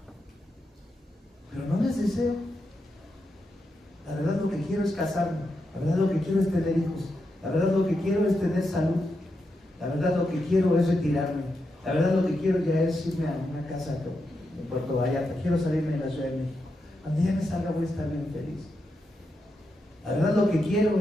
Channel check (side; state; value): both; normal; correlation 0.85